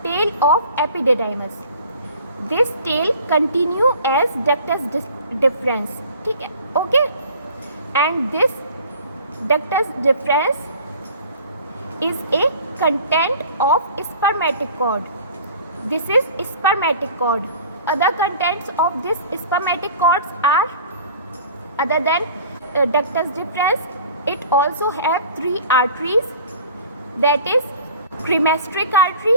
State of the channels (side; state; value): both; inverted; correlation -0.46